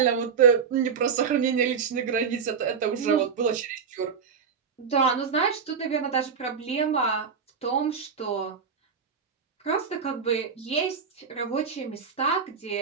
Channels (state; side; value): quieter; left; 6.2 dB